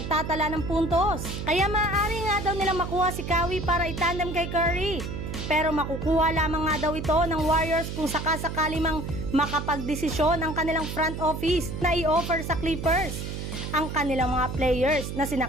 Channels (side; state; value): right; noise; hum, 6 dB below the sound